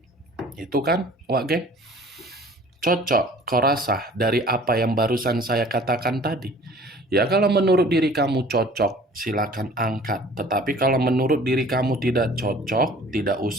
Itu kan, Wak Geng? Cocok, kau rasa dari apa yang barusan saya katakan tadi? Ya, kalau menurut diri kamu cocok, silakan angkat. Tetapi kalau menurut diri kamu tidak cocok, tidak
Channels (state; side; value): normal; both; correlation 0.49